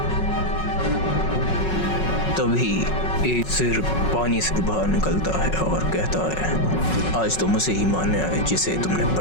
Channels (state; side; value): late; right; 5.4 ms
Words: तभी एक सिर पानी से बाहर निकलता है और कहता है, आज तो मुझे ही मानने आए जिसे तुमने